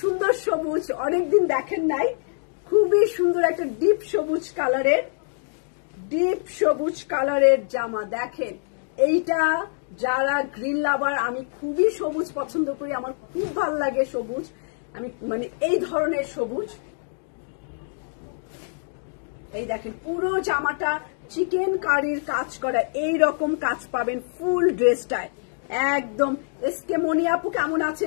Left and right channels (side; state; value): right; silent; digital silence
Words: সবুজ অনেকদিন দেখেন নাই। খুবই সুন্দর একটা ডিপ সবুজ কালারের জামা। দেখেন, এইটা যারা গ্রিন লাভার, আমি খুবই সবুজ পছন্দ করি, আমার খুব ভালো লাগে সবুজ, আমি মানে এই ধরনের সবুজ। এই দেখেন পুরো জামাটা চিকেন কারির কাজ করা, এই রকম কাজ পাবেন ফুল ড্রেসটায় একদম। এসকে মনি আপু কেমন